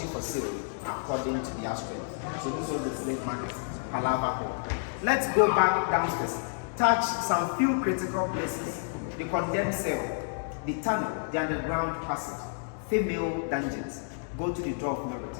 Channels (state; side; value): silent; right; digital silence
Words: for sale according to their strength. So this was the slave market, Palava Hall. Let's go back downstairs, touch some few critical places: the condemned cell, the tunnel, the underground passage, female dungeons. Go to the door of no